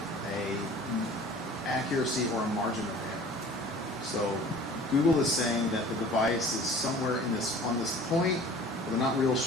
a accuracy or a margin of error. So Google is saying that the device is somewhere on this point, but they're not real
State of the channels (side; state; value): both; normal; correlation 0.46